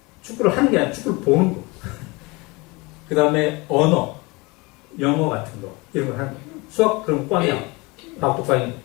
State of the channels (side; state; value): right; quieter; 25.3 dB